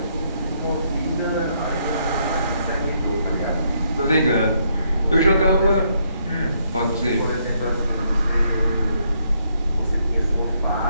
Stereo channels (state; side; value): inverted; both; correlation -0.73